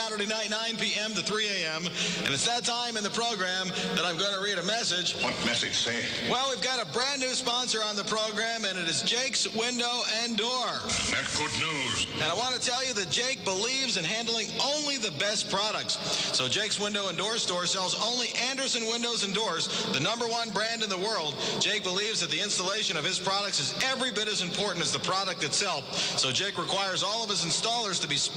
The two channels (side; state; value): both; identical; correlation 1.00